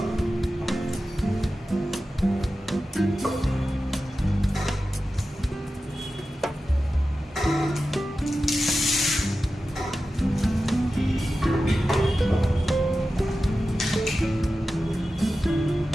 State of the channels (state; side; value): normal; both; correlation 0.93